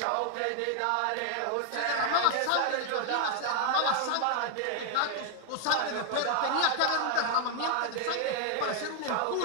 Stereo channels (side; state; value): both; different; correlation 0.00